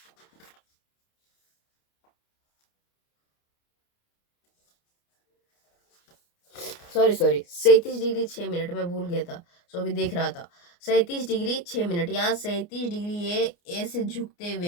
sorry 37 degree 6 minute, मैं भूल गया था। सो अभी देख रहा था 37 डिग्री 6 मिनट। यहाँ 37 डिग्री ये ऐसे झुकते हुए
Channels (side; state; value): right; late; 29 ms